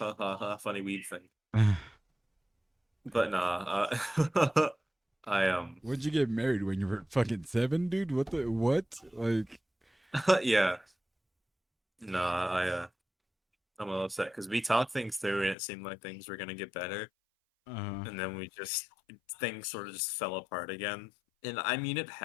ha ha. Funny weed thing. But nah. I When'd you get married? When you were fucking 7, dude? What the what? Like, yeah. Nah. I'm a little upset because we talked things through and it seemed like things were gonna get better, uh, and then we just things sort of just fell apart again. And I mean, it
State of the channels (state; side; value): drops out; right; at 15.6 s